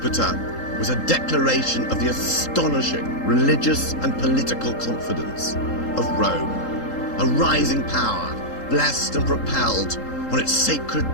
was a declaration of the astonishing religious and political confidence of Rome, a rising power blessed and propelled on its sacred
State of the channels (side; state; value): right; late; 3.8 ms